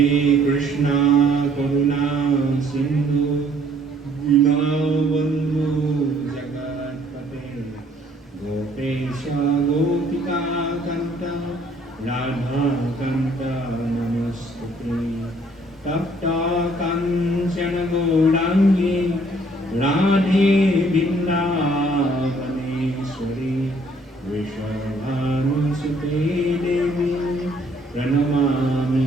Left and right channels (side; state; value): both; normal; correlation 0.62